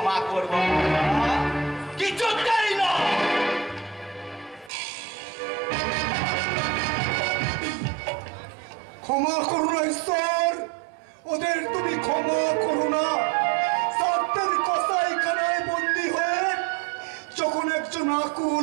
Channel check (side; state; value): left; drops out; at 4.7 s